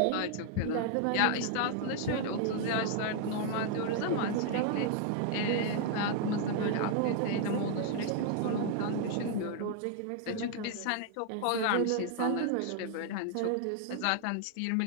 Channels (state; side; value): different; both; correlation 0.00